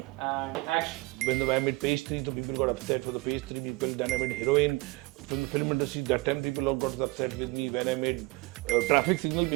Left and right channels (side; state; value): left; quieter; 24.0 dB